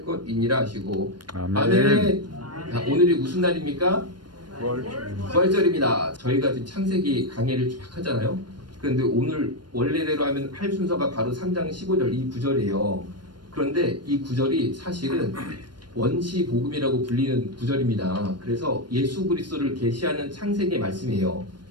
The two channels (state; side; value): late; left; 0.71 ms